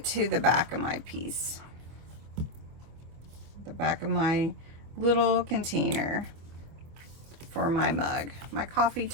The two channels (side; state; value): left; late; 25 ms